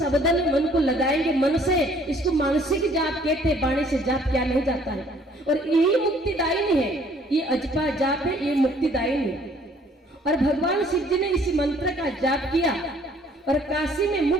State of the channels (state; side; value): normal; both; correlation 0.59